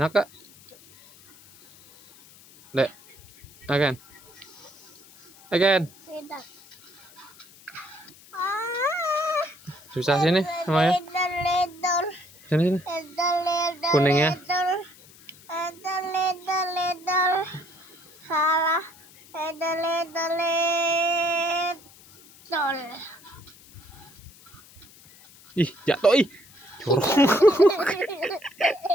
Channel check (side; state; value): left; noise; hiss, 24 dB below the sound